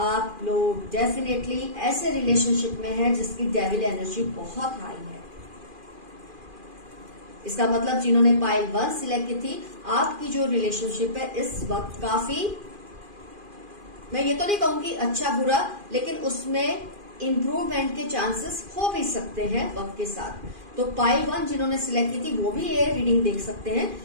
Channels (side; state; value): left; late; 2.4 ms